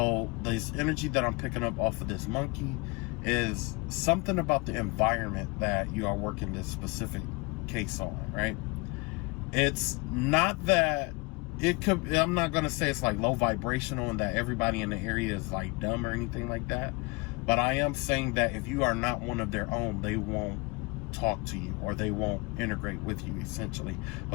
this energy that I'm picking up off of this monkey is something about the environment that you are working this specific case on, right? It's not that I'm not going to say it's like low vibrational and that everybody in the area is like dumb or anything like that. But I am saying that if you are not one of their own, they won't talk to you or they won't integrate with you, essentially.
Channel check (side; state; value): right; quieter; 27.4 dB